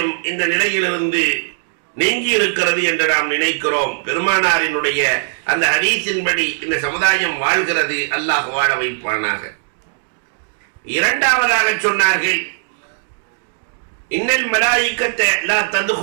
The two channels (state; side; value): silent; left; digital silence